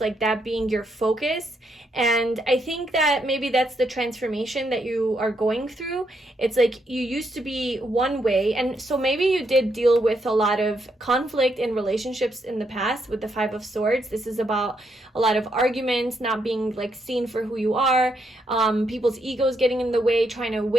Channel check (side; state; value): both; normal; correlation 0.77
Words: that being your focus. And I think that maybe that's the transformation that you are going through. It's like you used to be one way, and so maybe you did deal with a lot of conflict in relationships in the past with the Five of Swords. This is about a lot of arguments, not being like seen for who you are, people's egos getting in the way, trying to